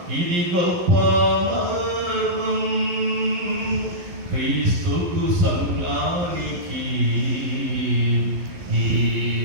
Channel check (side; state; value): left; late; 11 ms